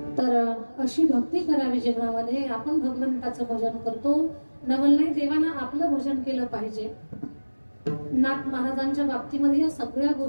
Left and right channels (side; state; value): both; inverted; correlation -1.00